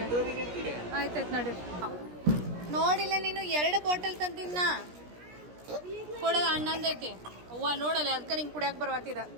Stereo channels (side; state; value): left; late; 17 ms